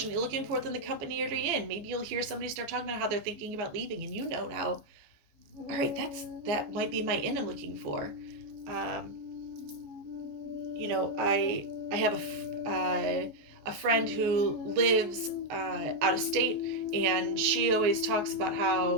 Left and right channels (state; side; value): late; left; 14 ms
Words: that you're looking for within the company you're in, maybe you'll hear somebody start talking about how they're thinking about leaving, and now, all right, that might be my in I'm looking for. I have a friend who lives out of state, and she always talks about